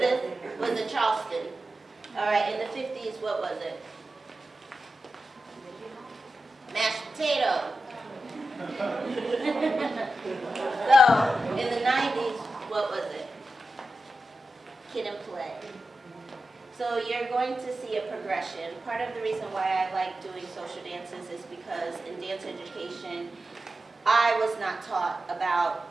was a Charleston. All right, in the 50s, what was it? Mashed potato. So in the 90s, what was it? Kid and play. So you're going to see a progression. Part of the reason why I like doing social dances is because in dance education, I was not taught about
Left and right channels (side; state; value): both; normal; correlation 0.91